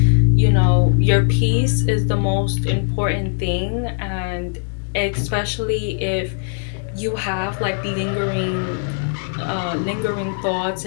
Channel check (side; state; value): right; silent; digital silence